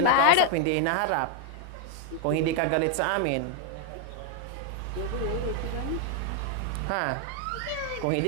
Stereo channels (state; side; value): different; both; correlation 0.00